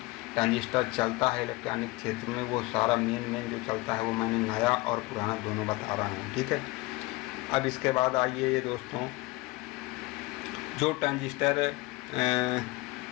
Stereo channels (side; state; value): right; quieter; 21.9 dB